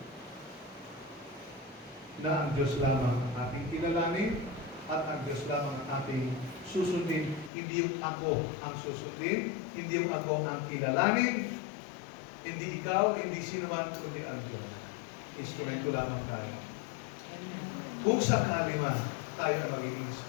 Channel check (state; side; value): drops out; right; at 7.5 s